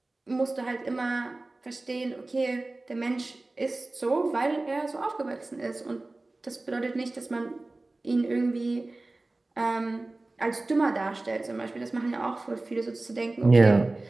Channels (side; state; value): left; quieter; 3.0 dB